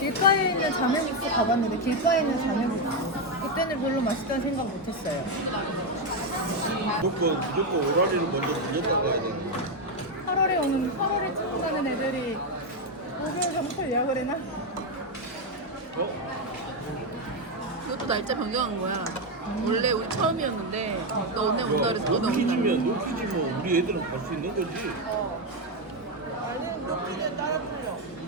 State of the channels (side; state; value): both; normal; correlation 0.06